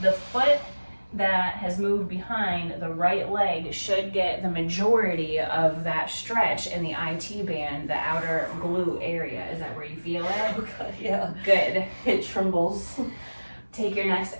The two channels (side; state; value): both; inverted; correlation -1.00